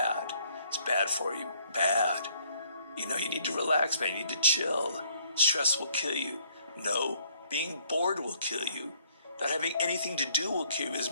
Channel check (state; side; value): inverted; both; correlation -0.64